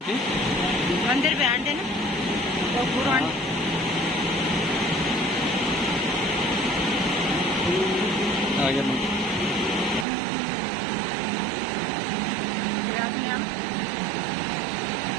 मंदिर पे आंटे ना तो पूरा आ गया मंदिर रात में हम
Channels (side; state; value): left; drops out; at 10.1 s